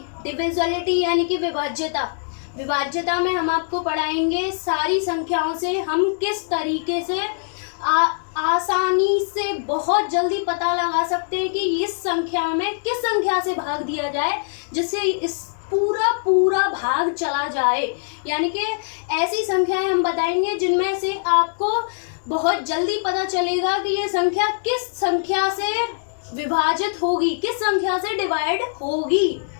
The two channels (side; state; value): right; silent; digital silence